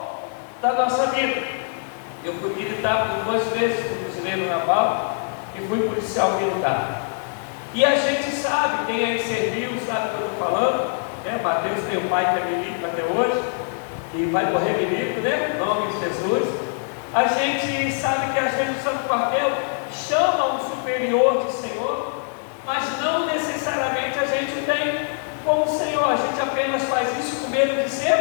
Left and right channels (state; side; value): silent; right; 63 dB below the other